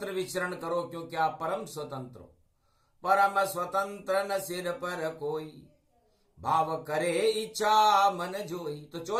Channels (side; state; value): both; identical; correlation 1.00